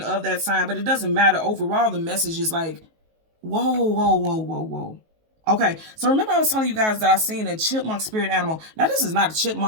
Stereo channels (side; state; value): left; late; 19 ms